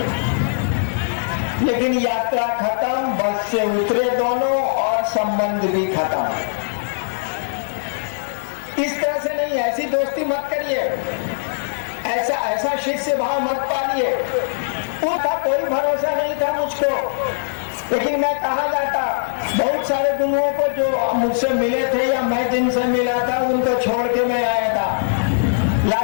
लेकिन यात्रा खत्म, बस से उतरे दोनों और संबंध भी खत्म। इस तरह से नहीं, ऐसी दोस्ती मत करिए, ऐसा शिष्य भाव मत पालिए। उनका कोई भरोसा नहीं था मुझको, लेकिन मैं कहा जाता, बहुत सारे गुरुओं को जो मुझसे मिले थे या मैं जिनसे मिला था उनको छोड़ के मैं आया था।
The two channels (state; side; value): silent; right; 58 dB below the other